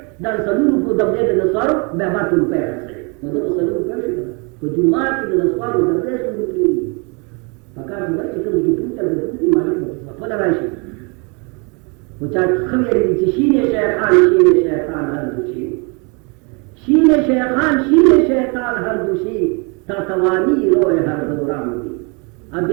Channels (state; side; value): quieter; left; 32.6 dB